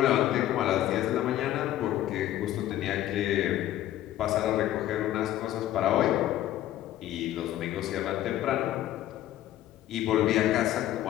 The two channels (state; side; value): quieter; right; 13.3 dB